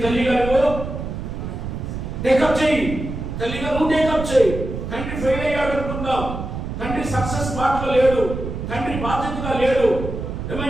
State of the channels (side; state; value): right; noise; rumble, 6 dB below the sound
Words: తల్లి గారు టేకప్ చేయి, తల్లిగా నువ్వు టేకప్ చేయి. తండ్రి ఫెయిల్ అయ్యాడు అనుకుందాం, తండ్రి సక్సెస్ పార్ట్ లో లేడు, తండ్రి బాధ్యతగా లేడు.